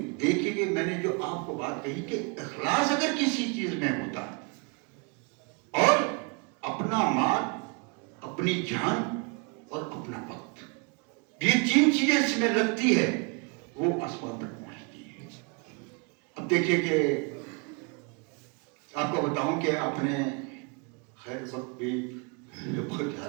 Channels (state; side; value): quieter; left; 33.6 dB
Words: دیکھیے کہ میں نے جو آپ کو بات کہی کہ اخلاص اگر کسی چیز میں ہوتا ہے اور اپنا مال، اپنی جان اور اپنا وقت، یہ 3 چیزیں اس میں لگتی ہے وہ آسمان تک پہنچتی ہے. اب دیکھیے کہ آپ کو بتاؤں کہ آپ نے خیر وقت بھی بہت جا